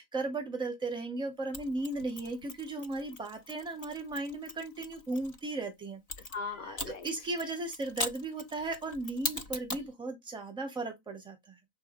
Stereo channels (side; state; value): right; late; 3.9 ms